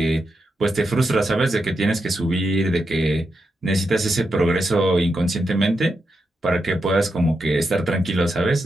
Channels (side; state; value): both; normal; correlation 0.86